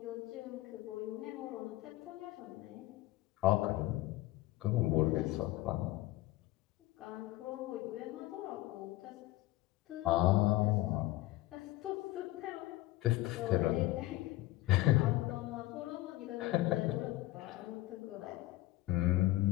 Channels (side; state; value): right; quieter; 17.5 dB